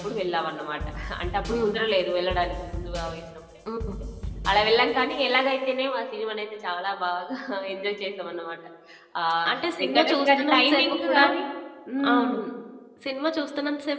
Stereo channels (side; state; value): both; identical; correlation 1.00